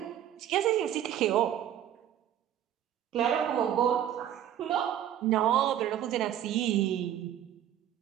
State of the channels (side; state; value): left; quieter; 10.9 dB